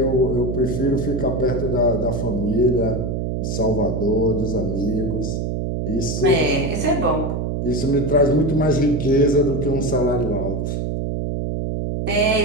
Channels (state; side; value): noise; right; hum, 2 dB below the sound